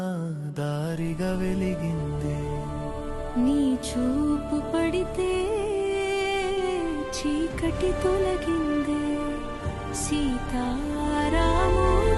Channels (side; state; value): both; identical; correlation 1.00